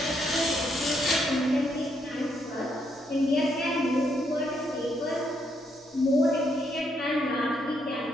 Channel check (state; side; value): normal; both; correlation 0.75